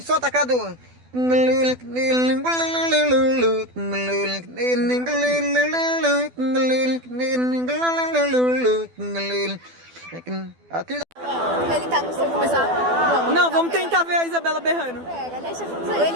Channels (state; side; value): late; left; 12 ms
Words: Solta, Cadu. Ele tá no seu começar. Não, vamos tentar ver a Isabela berrando. Pega, deixa